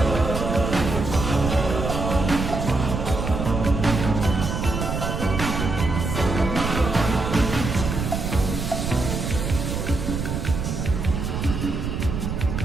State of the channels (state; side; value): noise; right; rumble, 3 dB below the sound